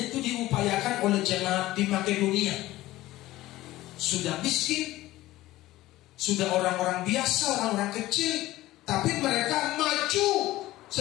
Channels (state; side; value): quieter; right; 16.7 dB